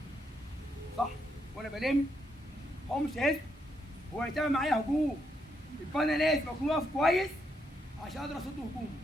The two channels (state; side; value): normal; both; correlation 0.78